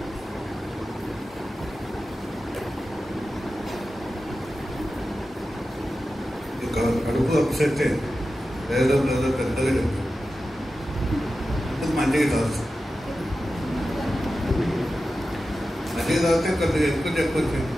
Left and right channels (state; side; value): normal; both; correlation 0.93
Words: కడుపు అప్సెట్ ఏదో పెద్దగా చెప్పు, మంచిగా తాగుతుంది. మంచిగా తాగితే కొద్దిగా ఎక్కువ చెప్పొచ్చు.